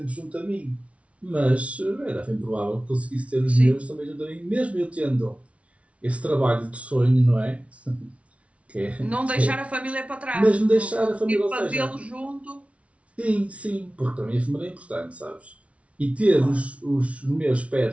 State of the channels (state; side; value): late; left; 0.063 ms